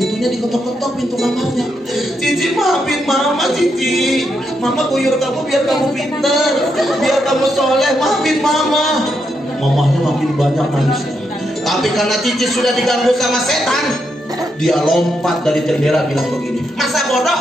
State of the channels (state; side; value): normal; both; correlation 0.81